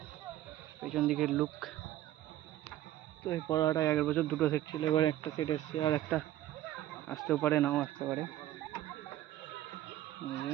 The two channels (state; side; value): quieter; left; 13.7 dB